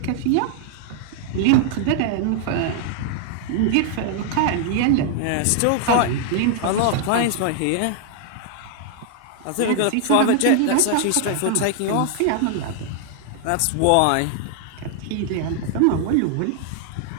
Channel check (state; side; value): different; both; correlation 0.00